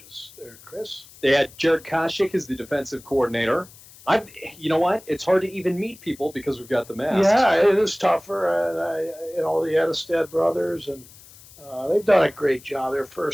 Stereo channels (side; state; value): left; noise; hiss, 22 dB below the sound